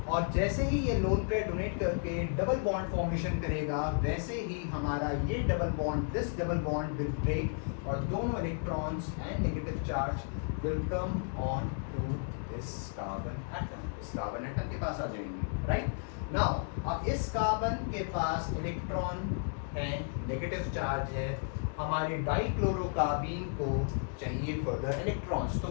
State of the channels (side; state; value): right; silent; 56 dB below the other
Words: और जैसे ही ये लोन पेयर डोनेट करके डबल बॉन्ड फॉर्मेशन करेगा, वैसे ही हमारा ये double bond, this double bond will break और दोनों electrons and negative charge will come on to this carbon atom. इस कार्बन एटम के पास आ जाएंगे, राइट? नाउ अब इस कार्बन के पास इलेक्ट्रॉन है, नेगेटिव चार्ज है, हमारे डाइक्लोरोकार्बीन को चाहिए फर्दर इलेक्ट्रॉन्स। तो